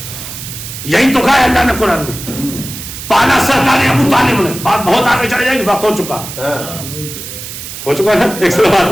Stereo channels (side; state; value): right; noise; hiss, 10 dB below the sound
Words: یہی تو کہا ہے اللہ نے قرآن میں, پالا سرکار ابو طالب نے. بات بہت آگے چڑھ جائے گی, وقت ہو چکا ہے. ایک سو بات